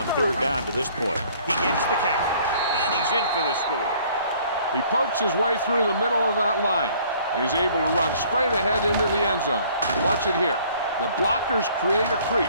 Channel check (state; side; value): inverted; both; correlation -0.57